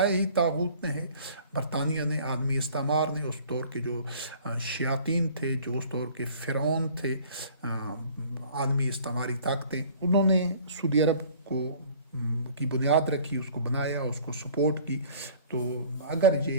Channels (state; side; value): inverted; both; correlation -0.51